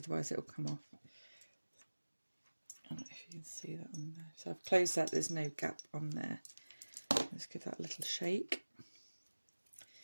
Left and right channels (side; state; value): both; inverted; correlation -1.00